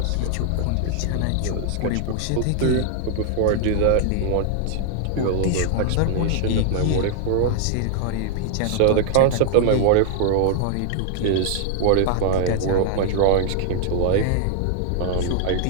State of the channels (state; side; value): different; both; correlation 0.00